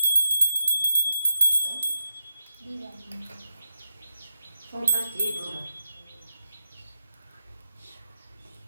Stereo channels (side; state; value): both; inverted; correlation -0.86